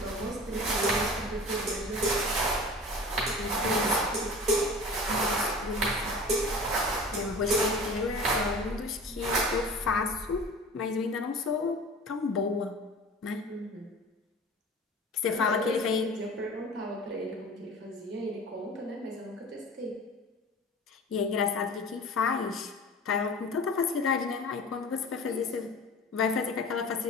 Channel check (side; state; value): both; normal; correlation 0.39